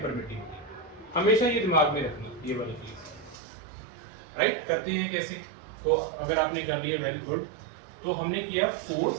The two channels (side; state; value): left; drops out; at 3.4 s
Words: permittivity. हमेशा ये दिमाग में रखना, ये वाली चीज। राइट, करते हैं कैसे? तो अगर आपने कर लिया वेल गुड। तो हमने किया